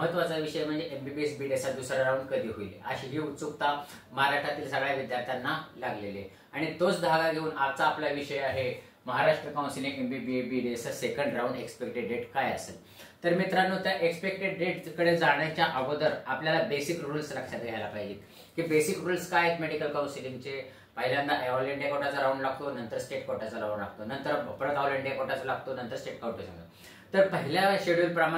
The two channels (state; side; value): identical; both; correlation 1.00